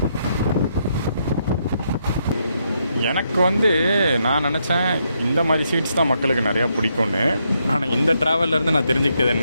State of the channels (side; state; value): both; inverted; correlation -0.78